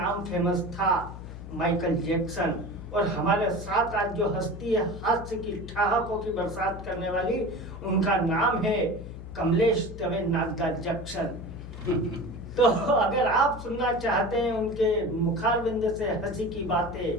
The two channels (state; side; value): noise; left; hum, 11 dB below the sound